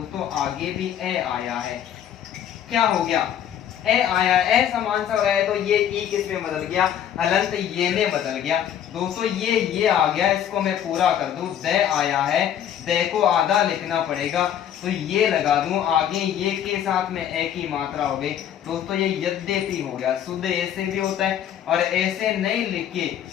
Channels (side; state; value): right; quieter; 10.0 dB